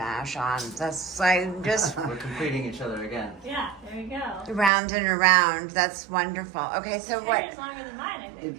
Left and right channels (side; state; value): left; drops out; at 4.7 s